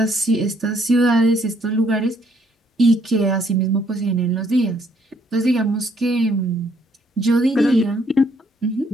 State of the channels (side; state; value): both; normal; correlation 0.68